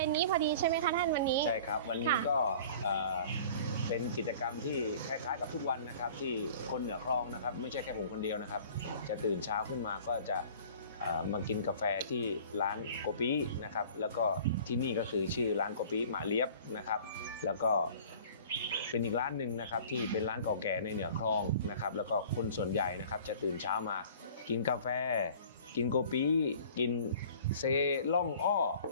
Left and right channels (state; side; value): inverted; both; correlation -0.47